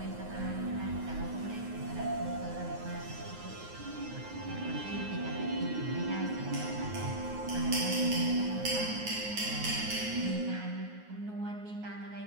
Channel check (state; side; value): late; left; 9.5 ms